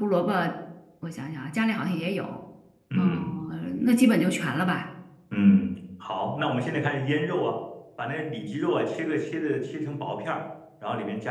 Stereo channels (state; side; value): identical; both; correlation 1.00